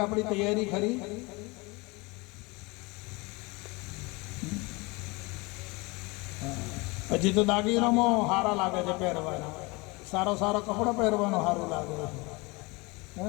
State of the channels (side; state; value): right; quieter; 25.7 dB